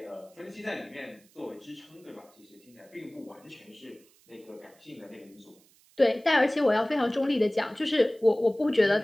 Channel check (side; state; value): right; noise; hiss, 30 dB below the sound